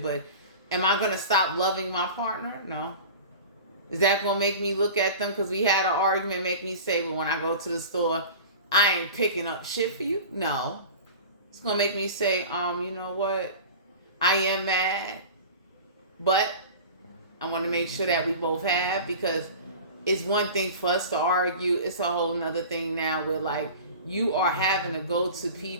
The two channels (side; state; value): both; inverted; correlation -0.36